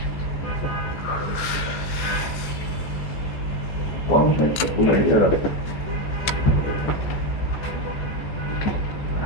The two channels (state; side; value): late; right; 14 ms